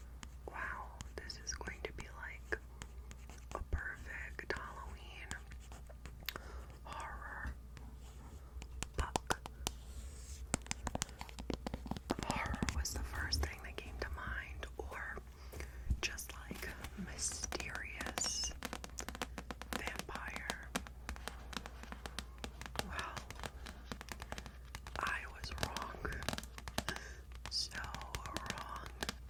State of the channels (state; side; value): identical; both; correlation 1.00